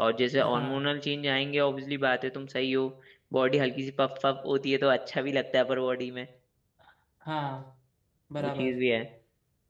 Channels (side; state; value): both; identical; correlation 1.00